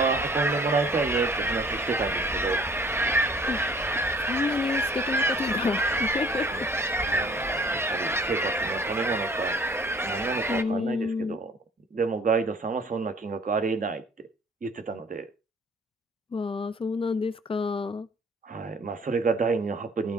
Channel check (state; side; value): normal; both; correlation 0.54